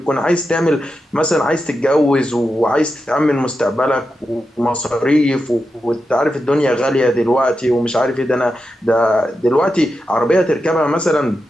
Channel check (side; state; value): both; normal; correlation 0.89